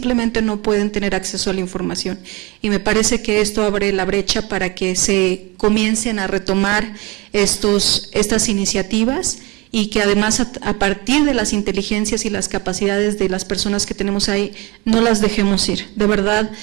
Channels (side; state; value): left; quieter; 23.0 dB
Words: no pueden tener acceso a la información. Y me parece que esto abre la brecha para que se comiencen a retomar estas iniciativas y que además a partir de las inteligencias y las capacidades de las personas que tenemos ahí, no las dejemos ir. De verdad,